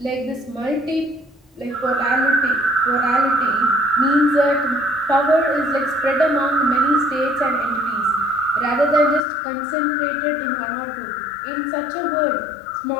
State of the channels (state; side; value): drops out; right; at 9.2 s